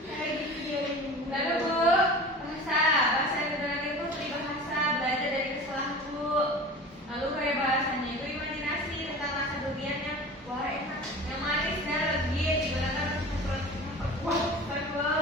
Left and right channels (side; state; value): both; normal; correlation 0.37